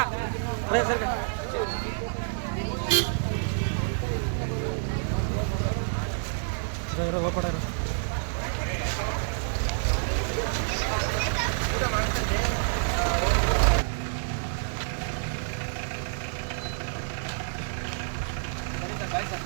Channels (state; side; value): silent; left; digital silence